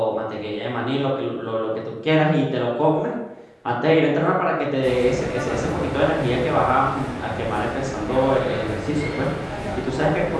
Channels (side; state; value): both; identical; correlation 1.00